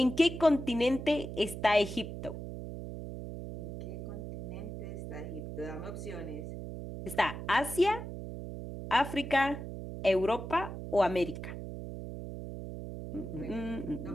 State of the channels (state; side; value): noise; right; hum, 8 dB below the sound